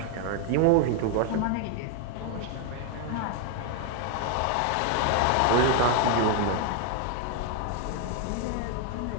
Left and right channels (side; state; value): both; different; correlation 0.01